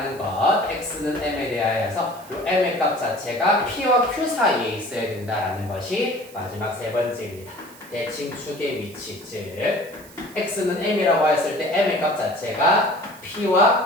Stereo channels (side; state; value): right; noise; hiss, 21 dB below the sound